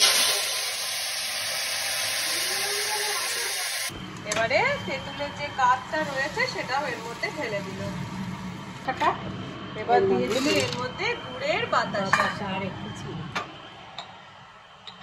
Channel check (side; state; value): both; identical; correlation 1.00